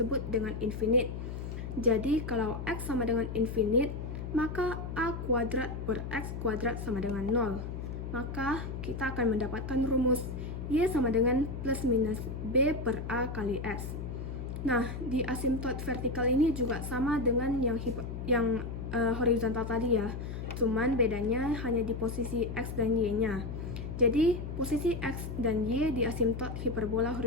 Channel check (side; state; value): left; noise; hum, 6 dB below the sound